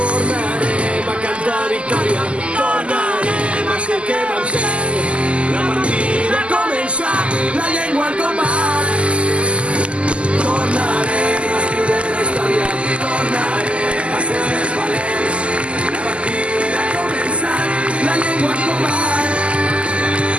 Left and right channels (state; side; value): late; left; 0.056 ms